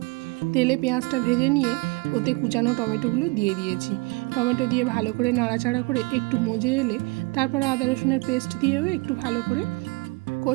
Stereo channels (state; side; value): quieter; left; 26.9 dB